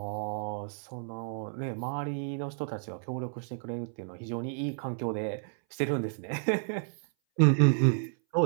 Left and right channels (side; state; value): left; silent; 57 dB below the other